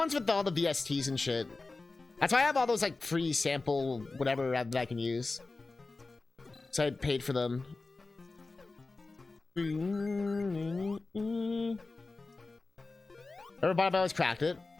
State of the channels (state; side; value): quieter; right; 3.6 dB